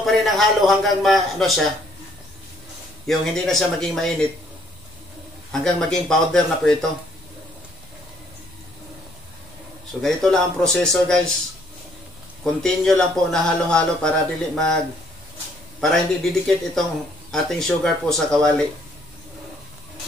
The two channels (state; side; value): noise; left; rumble, 25 dB below the sound